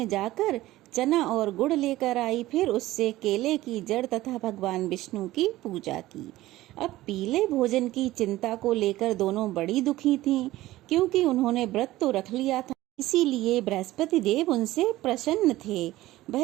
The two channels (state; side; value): quieter; left; 16.6 dB